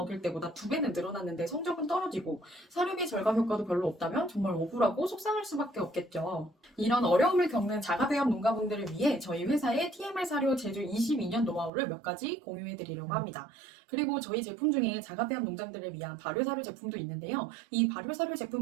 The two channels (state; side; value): drops out; left; at 11.7 s